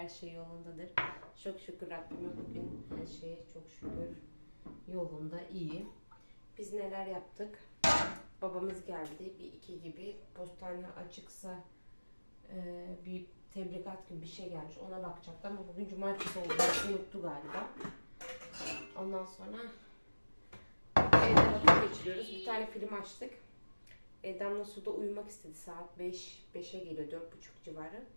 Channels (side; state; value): both; inverted; correlation -1.00